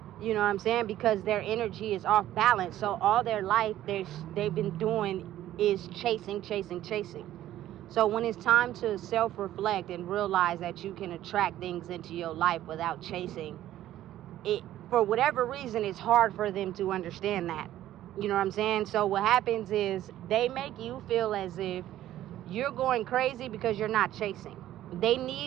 you know what I'm saying, because their energy is off balance. So all their life they've been doing is chasing. So when it's time to self-reflect and realize that you can attract things into your life without chasing it, for whatever reason, it's hard for them to understand that. You know what I'm saying? So what happens is they make you feel as if you're going crazy because you're not chasing. They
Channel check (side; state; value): left; quieter; 13.3 dB